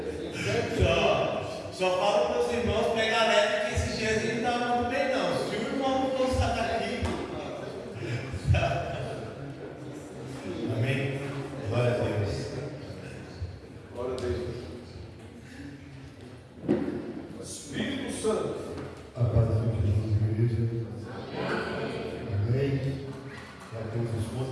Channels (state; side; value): identical; both; correlation 1.00